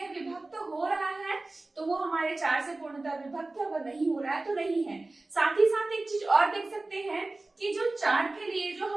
विभक्त हो रहा है तो वो हमारे 4 से पूर्णतः विभक्त है, अगर नहीं हो रहा है तो नहीं है। साथ ही साथ एक चीज और देख सकते हैं कि जो 4 के लिए जो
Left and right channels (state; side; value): quieter; left; 3.1 dB